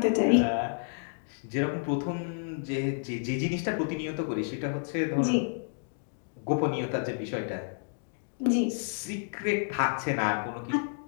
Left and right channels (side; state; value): right; silent; digital silence